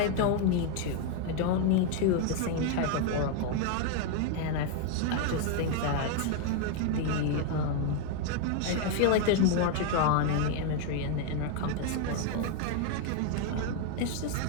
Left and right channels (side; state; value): both; different; correlation 0.01